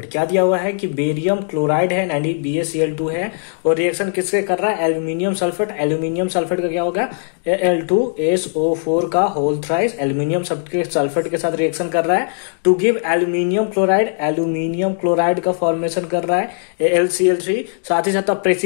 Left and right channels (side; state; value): right; silent; 67 dB below the other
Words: क्या दिया हुआ है कि बेरियम क्लोराइड है, यानी BaCl2 है, और रिएक्शन किससे कर रहा है? Aluminium sulphate. एल्यूमिनियम सल्फेट का क्या होगा? Al2SO4 का होल थ्राइस एल्यूमिनियम सल्फेट के साथ रिएक्शन कर रहा है to give aluminium chloride. Aluminium chloride का फॉर्मेशन कर रहा है AlCl3। साथ ही साथ